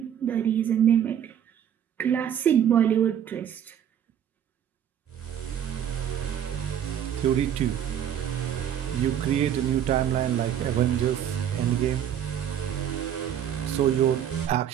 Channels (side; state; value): left; quieter; 9.6 dB